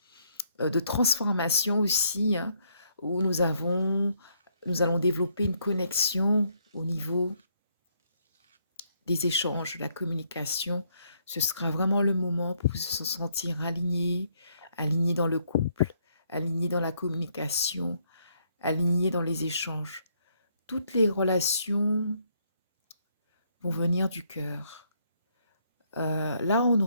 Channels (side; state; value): both; inverted; correlation -0.71